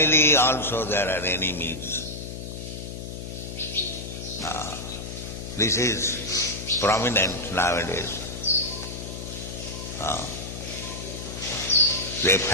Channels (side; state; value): left; noise; hum, 8 dB below the sound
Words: also there are enemies. This is prominent nowadays. The